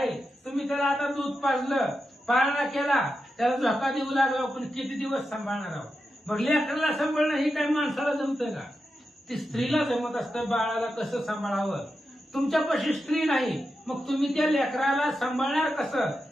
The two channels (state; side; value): normal; both; correlation 0.89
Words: तुम्ही त्याला आता दूध पाजलं पाळणा केला त्याला झोका देऊ लागला पण किती दिवस सांभाळणार आहोत. मग लेकराला सांभाळणं ही काही माणसाला जमतं का. ती स्त्रीला जमत असतं बाळाला कसं सांभाळावं. तुमच्यापाशी स्त्री नाही मग तुम्ही त्या लेकराला सांभाळणार कसं.